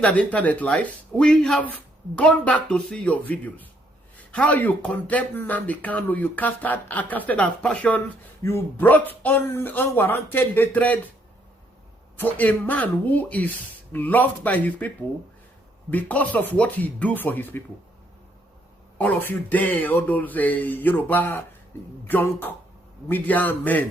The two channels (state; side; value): normal; both; correlation 0.70